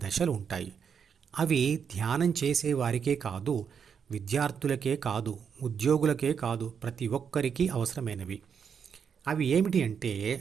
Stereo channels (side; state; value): left; quieter; 7.0 dB